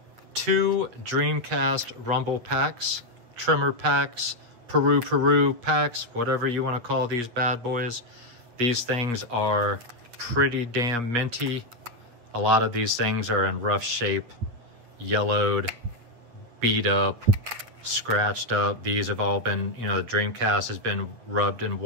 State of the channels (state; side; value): late; left; 8.7 ms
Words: 2 Dreamcast Rumble packs, trimmer packs, Peru packs, whatever you want to call these bad boys. These things are pretty damn minty. A lot of these things are in rough shape, yellowed, beat up, scratched up. These have all been, you know, the Dreamcast has been rubbed and